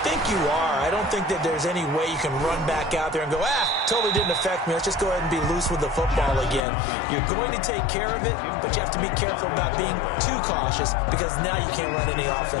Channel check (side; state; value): right; drops out; at 6.6 s